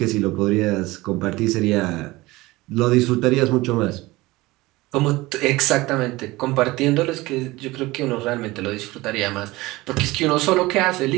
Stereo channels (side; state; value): left; quieter; 20.3 dB